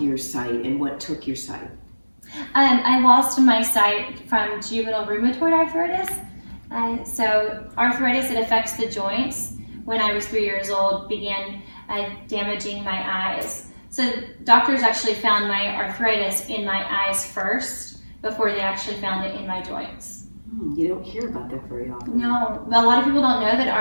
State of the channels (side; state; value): both; inverted; correlation -1.00